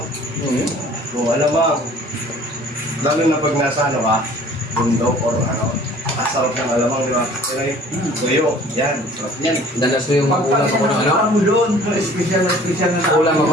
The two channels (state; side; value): normal; both; correlation 0.50